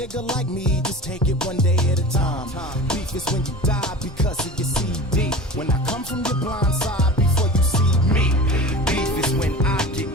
like me just take it one day at a time. Beef is when you die because of your CD. When I come from your blind side before you see me. Beef is when I get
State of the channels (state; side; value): normal; both; correlation 0.35